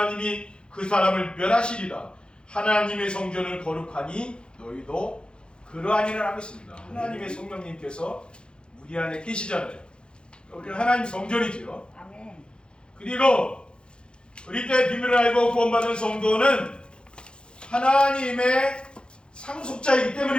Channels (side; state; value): right; late; 0.052 ms